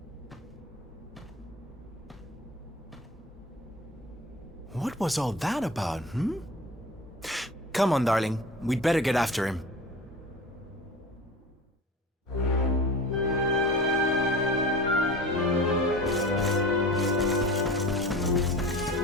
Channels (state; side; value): normal; both; correlation 0.36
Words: What was all that about, hmm? Come on, darling. We'd better get after him.